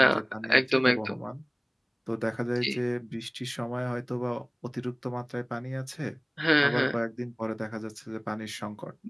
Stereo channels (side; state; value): both; identical; correlation 1.00